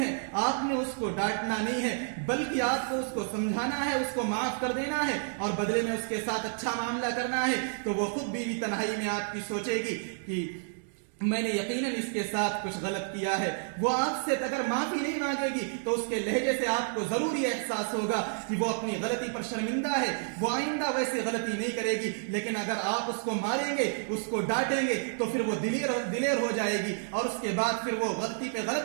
ہے، آپ نے اس کو ڈانٹنا نہیں ہے، بلکہ آپ کو اس کو سمجھانا ہے، اس کو معاف کر دینا ہے اور بدلے میں اس کے ساتھ اچھا معاملہ کرنا ہے. تو وہ خود بیوی تنہائی میں آپ کی سوچے گی کہ میں نے یقیناً اس کے ساتھ کچھ غلط کیا ہے. وہ آپ سے اگر معافی نہیں مانگے گی تو اس کے لہجے سے آپ کو ضروری احساس ہوگا کہ وہ اپنی غلطی پر شرمندہ ہے، وہ آئندہ ویسے غلطی نہیں کرے گی. لیکن اگر آپ اس کو ماریں گے، اس کو ڈانٹیں گے تو پھر وہ دلیر ہو جائے گی اور اس کے بعد پھر وہ غلطی پہ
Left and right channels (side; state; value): left; silent; digital silence